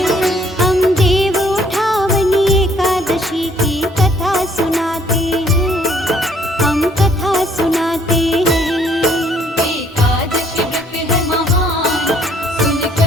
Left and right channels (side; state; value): both; normal; correlation 0.63